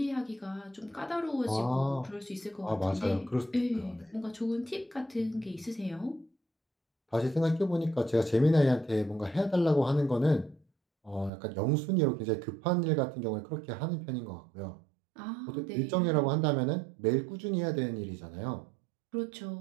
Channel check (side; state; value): left; drops out; at 11.3 s